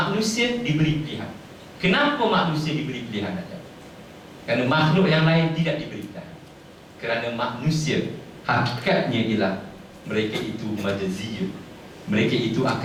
diberi pilihan. Kenapa manusia diberi pilihan saja? Kerana makhluk yang lain tidak diberi pilihan. Kerana manusia hakikatnya ialah mereka itu majaziyun. Mereka itu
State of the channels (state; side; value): identical; both; correlation 1.00